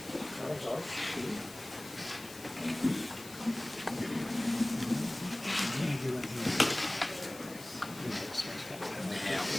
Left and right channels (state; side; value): noise; left; hiss, 16 dB below the sound